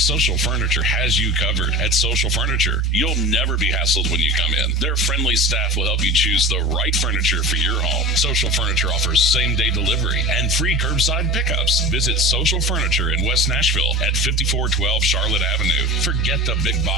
Furniture has you covered. At Social Furniture, you'll never be hassled when you come in. Their friendly staff will help you choose the right furniture for your home. Social Furniture offers same-day delivery and free curbside pickups. Visit Social Furniture in West Nashville at 5412 Charlotte Avenue. Forget the big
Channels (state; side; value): normal; both; correlation 0.32